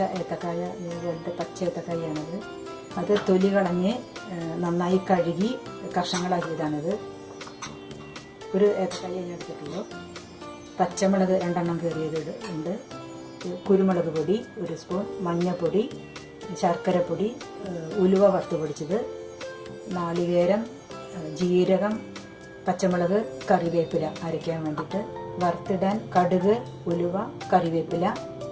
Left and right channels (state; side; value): identical; both; correlation 1.00